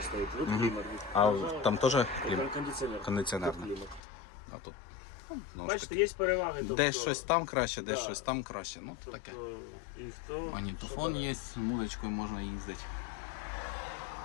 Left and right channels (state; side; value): drops out; right; at 4.0 s